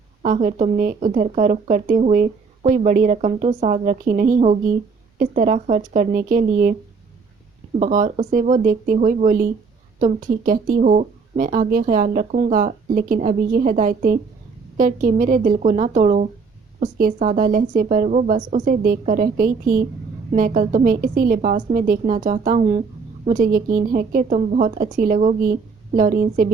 آخر تم نے ادھر کا رخ کرتے ہوئے کوئی بڑی رقم تو ساتھ رکھی نہیں ہوگی اس طرح خرچ کرنے کے لیے۔ بغور اسے وہ دیکھتے ہوئے بولی، تم ٹھیک کہتی ہو، میں آگے خیال رکھوں گا، لیکن ابھی یہ ہدایتیں کر کے میرے دل کو نہ توڑو، اس کے سادہ لہجے پر وہ بس اسے دیکھ کر رہ گئی تھی۔ میں کل تمہیں اسی لباس میں دیکھنا چاہتا ہوں، مجھے یقین ہے کہ تم بہت اچھی لگو گی، لورین سے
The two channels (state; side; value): quieter; left; 5.0 dB